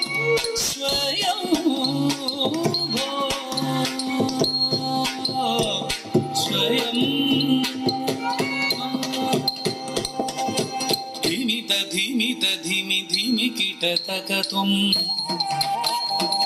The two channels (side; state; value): both; identical; correlation 1.00